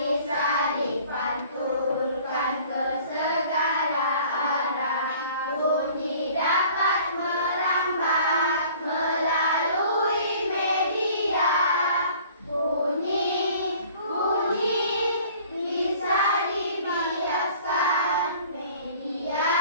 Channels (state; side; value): inverted; both; correlation -0.51